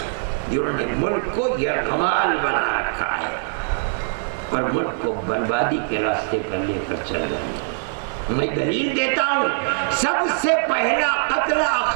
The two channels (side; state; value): left; silent; digital silence